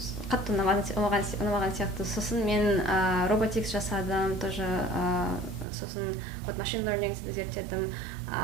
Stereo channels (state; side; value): drops out; left; at 5.7 s